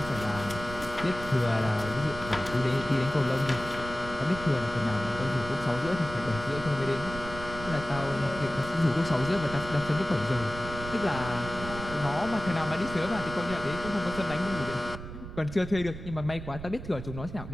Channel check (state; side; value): noise; right; rumble, 10 dB below the sound